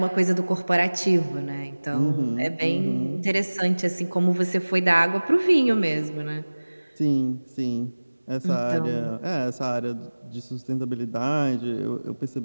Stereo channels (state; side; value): inverted; both; correlation -1.00